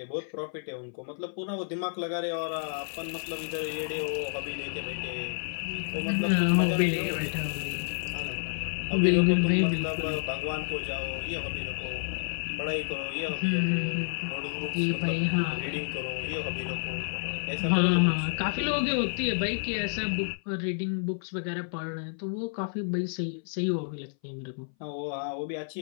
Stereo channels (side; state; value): right; silent; 58 dB below the other